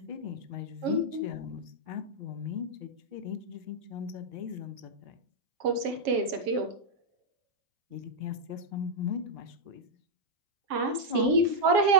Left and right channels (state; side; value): late; left; 7.4 ms